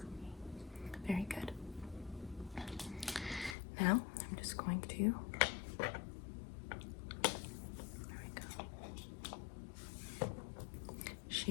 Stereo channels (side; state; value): right; drops out; at 3.6 s